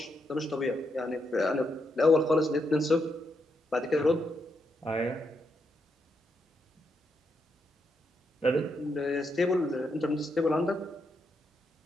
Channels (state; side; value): normal; both; correlation 0.80